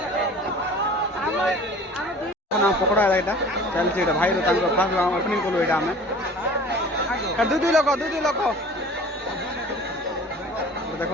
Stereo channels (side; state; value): both; normal; correlation 0.44